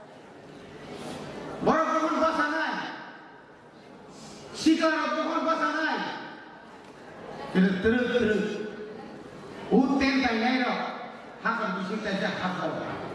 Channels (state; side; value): identical; both; correlation 1.00